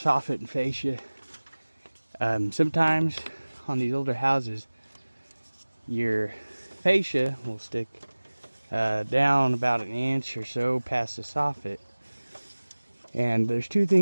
and fascia, sometimes on these older houses, your fascia will stick down about 1 inch or so past the soffit. And there's two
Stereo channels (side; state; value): both; inverted; correlation -1.00